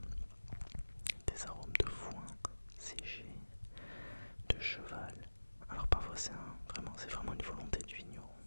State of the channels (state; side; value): inverted; both; correlation -1.00